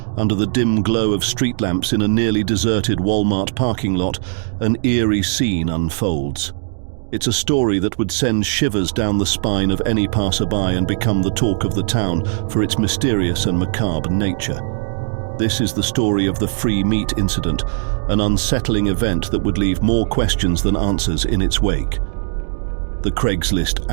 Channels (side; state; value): left; silent; digital silence